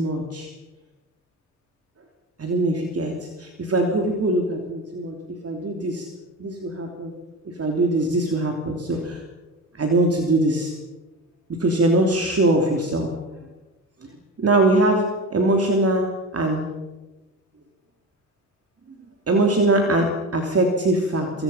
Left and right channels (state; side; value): normal; both; correlation 0.27